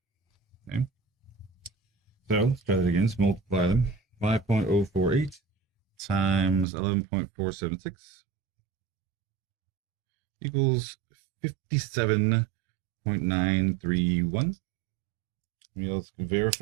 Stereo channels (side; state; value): left; drops out; at 6.7 s